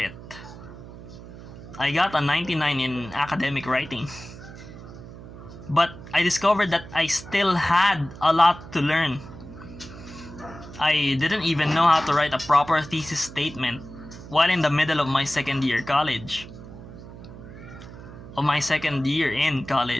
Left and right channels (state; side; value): noise; right; hum, 15 dB below the sound